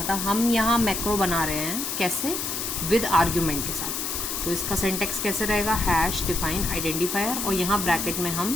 हम यहाँ मैक्रो बना रहे हैं कैसे, विद आर्ग्यूमेंट के साथ। तो इसका सिंटेक्स कैसे रहेगा, हैश डिफाइन आइडेंटिफायर, और यहाँ ब्रैकेट में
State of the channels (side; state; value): left; noise; hiss, 3 dB below the sound